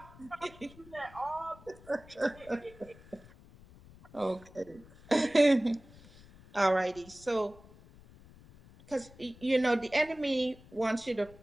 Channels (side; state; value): left; noise; rumble, 22 dB below the sound